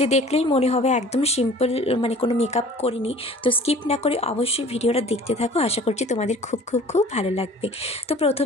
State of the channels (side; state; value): both; normal; correlation 0.47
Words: দেখলেই মনে হবে একদম সিম্পল, মানে কোনো মেকআপ করিনি। তো স্কিপ না করে অবশ্যই ভিডিওটা দেখতে থাকো, আশা করছি তোমাদের খুব খুব খুব ভালো লাগবে। তো